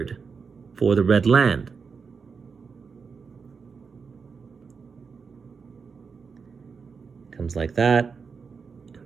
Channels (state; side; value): quieter; left; 5.4 dB